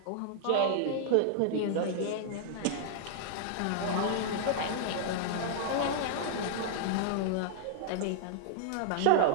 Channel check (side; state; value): both; different; correlation -0.01